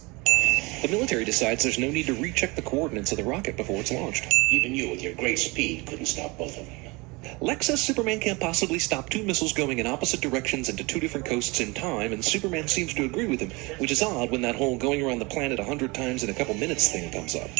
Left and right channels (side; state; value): left; quieter; 25.7 dB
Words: The military decides there's no need to recheck the coordinates of the rocket before it's launched. Even you, with your great speed, couldn't stop both of them. Lex says Superman can't possibly stop two missiles going in opposite directions into two different coasts in time, and Superman seems to agree with him, which is odd when that whole going around the planet 100 times in a couple minutes thing comes up.